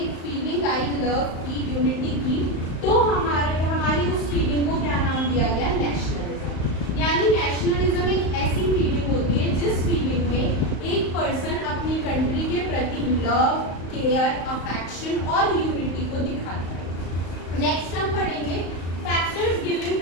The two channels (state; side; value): late; right; 35 ms